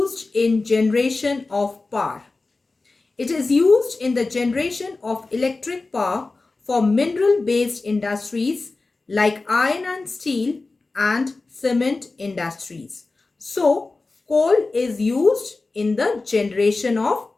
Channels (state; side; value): quieter; right; 3.6 dB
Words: in generation of power. It is used in the generation of electric power for mineral based industries like iron and steel and cement industries. So, coal is used in the generation of